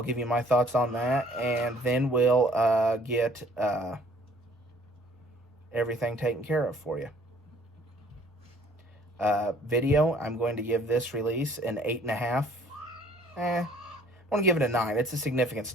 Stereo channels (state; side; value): normal; both; correlation 0.57